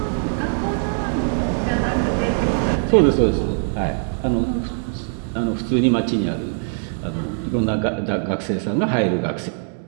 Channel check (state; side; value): silent; left; digital silence